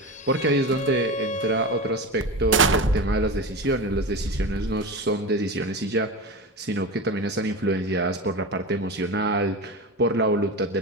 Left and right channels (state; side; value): normal; both; correlation 0.24